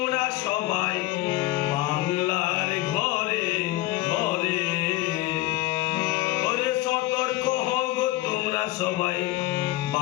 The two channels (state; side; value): quieter; right; 17.4 dB